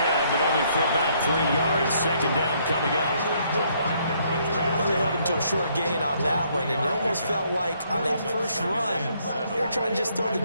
but only for about 3 yards. Second down coming up. Well, they held him to a short gain on that one, and it almost felt like on that first run, they were trying to just throw the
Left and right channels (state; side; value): inverted; both; correlation -0.69